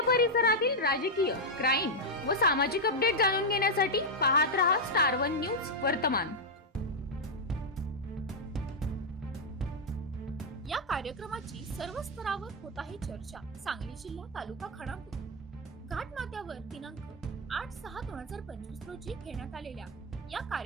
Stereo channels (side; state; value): both; normal; correlation 0.00